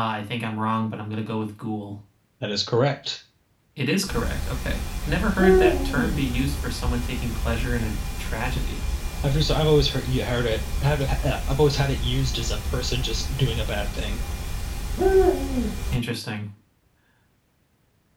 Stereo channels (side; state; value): both; identical; correlation 1.00